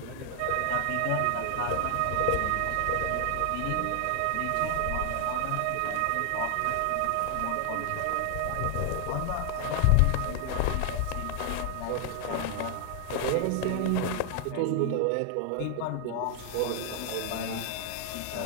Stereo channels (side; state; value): both; different; correlation 0.00